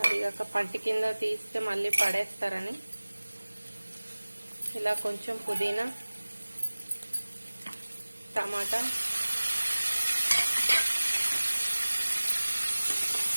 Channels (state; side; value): inverted; both; correlation -1.00